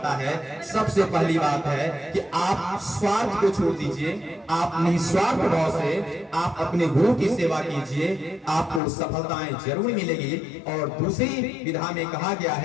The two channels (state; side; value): drops out; right; at 8.8 s